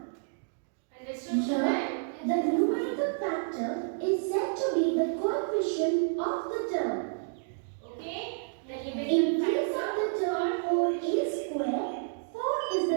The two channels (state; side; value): silent; left; digital silence